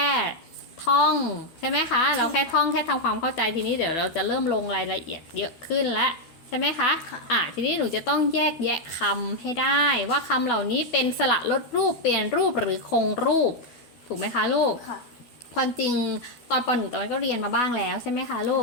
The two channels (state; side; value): late; right; 13 ms